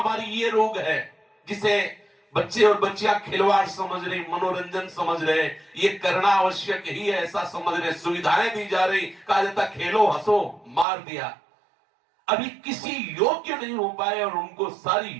ये रोग है, जिसे बच्चे और बच्चियां खिलवाड़ समझ रहे, मनोरंजन समझ रहे, ये करना आवश्यक ही है ऐसा समझ रहे, सुविधाएं दी जा रही, कहा जाता खेलो हंसो, मार दिया। अभी किसी योग्य नहीं हो पाए और उनको सारी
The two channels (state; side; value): drops out; left; at 10.9 s